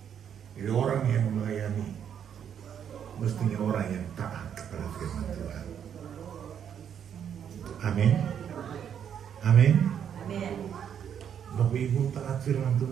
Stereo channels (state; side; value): quieter; left; 8.6 dB